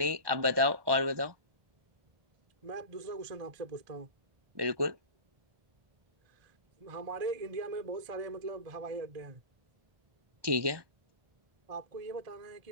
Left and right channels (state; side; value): late; left; 1.2 ms